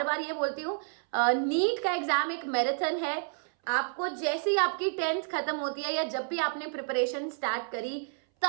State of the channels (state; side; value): silent; left; 58 dB below the other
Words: बार ये बोलती हूँ, नीट का एग्जाम एक मैराथन है। आपको जैसे ही आपकी 10th खत्म होती है या जब भी आपने प्रिपरेशन स्टार्ट करी,